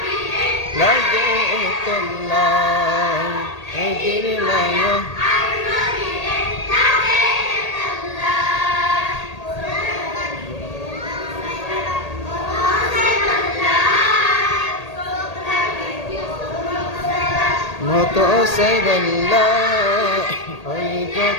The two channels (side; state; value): right; late; 1.8 ms